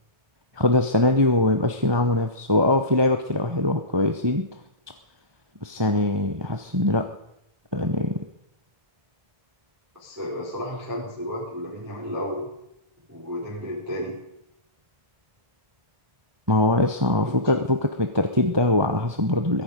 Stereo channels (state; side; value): late; left; 1.2 ms